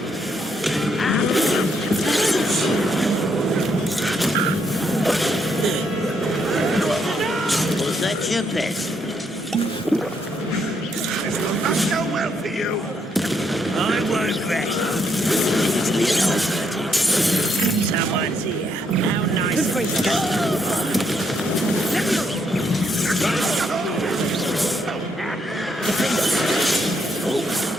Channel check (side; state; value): both; normal; correlation 0.75